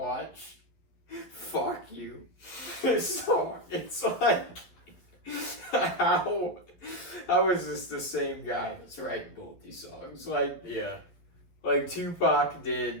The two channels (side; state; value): right; late; 11 ms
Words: Fuck you. So it's like, how is this the same guy that's writing both these songs? Like, like Tupac